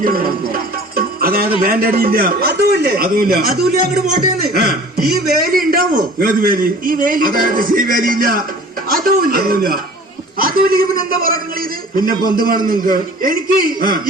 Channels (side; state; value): both; normal; correlation 0.45